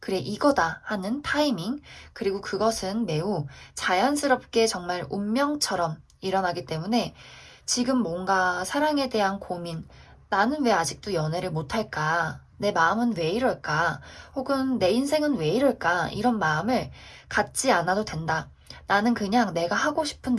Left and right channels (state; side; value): identical; both; correlation 1.00